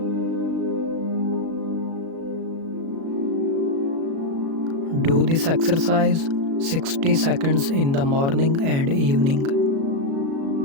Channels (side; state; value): left; late; 36 ms